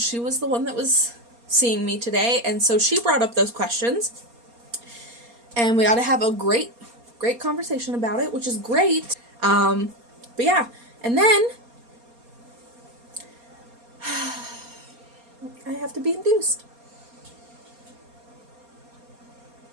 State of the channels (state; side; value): late; left; 4.2 ms